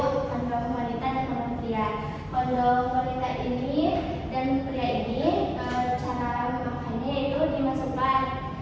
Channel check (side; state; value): both; identical; correlation 1.00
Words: kondom wanita dan kondom pria. Kondom wanita ini dan pria ini cara memakainya itu dimasukkan